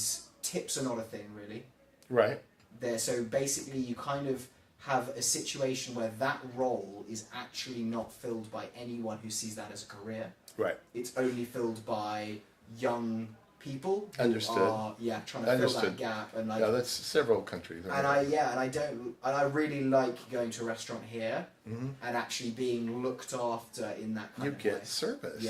tips are not a thing really. Right. So basically you kind of have a situation where that role is actually not filled by anyone who sees that as a career. Right. It's only filled by young people who Understood. are trying to fill that Understood. gap and like Yeah, that's several countries. and I really like going to a restaurant here and actually being looked after in that kind You of get way. service,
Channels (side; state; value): both; identical; correlation 1.00